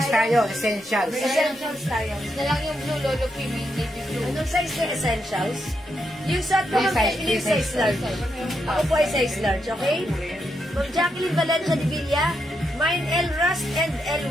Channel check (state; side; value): normal; both; correlation 0.82